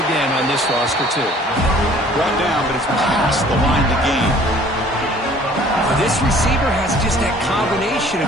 again on this roster, too. Brought down, but it's past the line to gain. This receiver has just that combination of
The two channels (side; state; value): both; normal; correlation 0.53